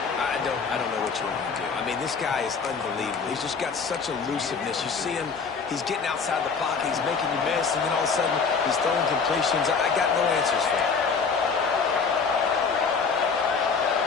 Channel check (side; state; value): right; quieter; 5.4 dB